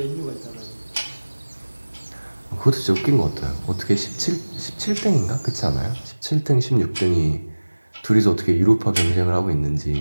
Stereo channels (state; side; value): inverted; both; correlation -1.00